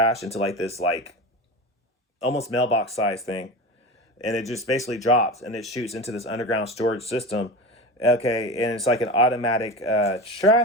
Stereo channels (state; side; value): normal; both; correlation 0.27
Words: into like this, like almost mailbox size thing. And it just basically drops and it shoots into this underground storage system. Okay, and it's like an automatic